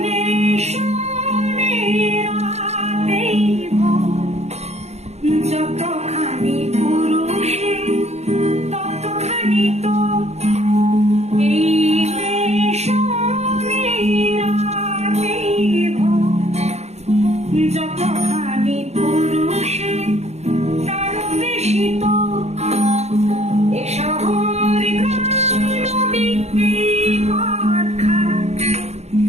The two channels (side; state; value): left; late; 0.31 ms